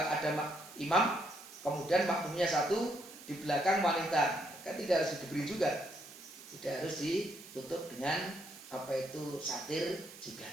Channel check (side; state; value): right; noise; hiss, 17 dB below the sound